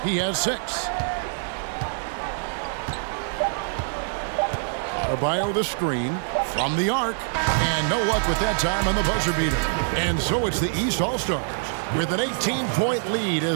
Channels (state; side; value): silent; left; 62 dB below the other